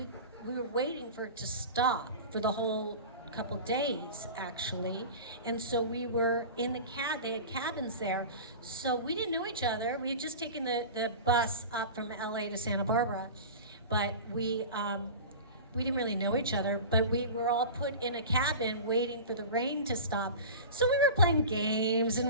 were waiting for it to stop for the whole couple days, actually. And so we were in the they had cabins there. So we didn't know each other. We had just taken the bus up from LA to Santa Barbara, but we didn't really know each other, but we were all put in a cabin waiting for the rain to stop. So we were playing games and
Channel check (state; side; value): inverted; both; correlation -0.33